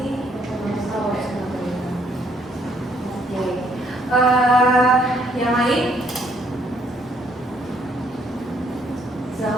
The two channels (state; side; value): normal; both; correlation 0.68